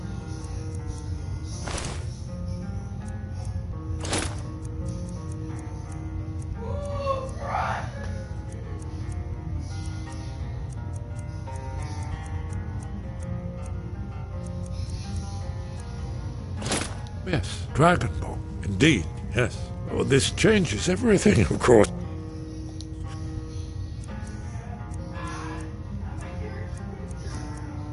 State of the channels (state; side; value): identical; both; correlation 1.00